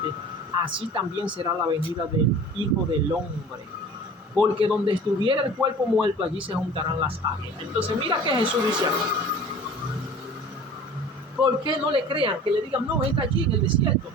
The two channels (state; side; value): normal; both; correlation 0.43